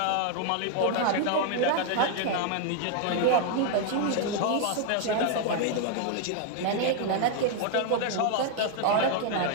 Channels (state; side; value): different; both; correlation 0.00